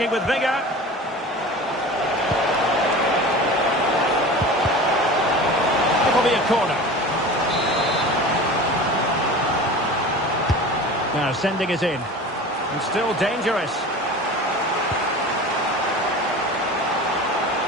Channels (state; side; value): normal; both; correlation 0.35